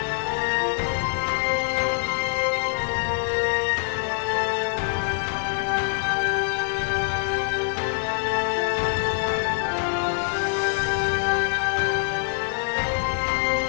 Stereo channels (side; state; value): right; silent; 62 dB below the other